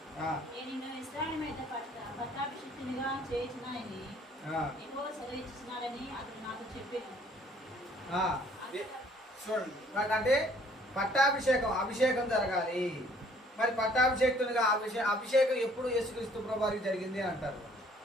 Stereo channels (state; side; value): normal; both; correlation 0.59